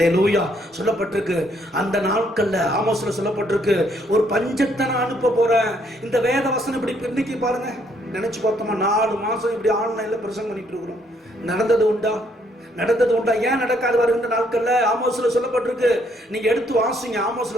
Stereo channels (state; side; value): normal; both; correlation 0.69